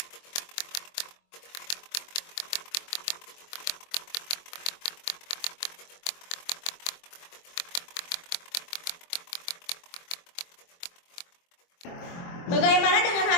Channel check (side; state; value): right; late; 23 ms